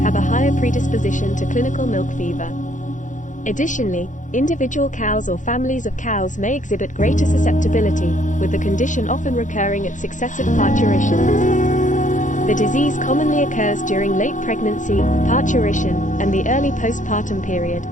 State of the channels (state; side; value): late; right; 0.37 ms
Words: have a higher predisposition to clinical milk fever. Additionally, individual cows or families of cows may exhibit greater susceptibility, with the condition often recurring at successive parturitions. The disease commonly occurs during late pregnancy, parturition, and the early postpartum period,